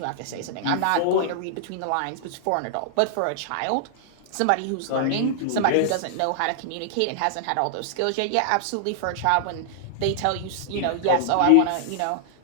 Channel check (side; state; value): both; different; correlation -0.01